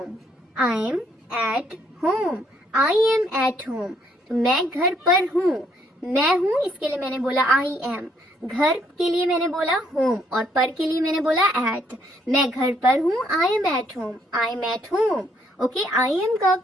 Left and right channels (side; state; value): both; normal; correlation 0.69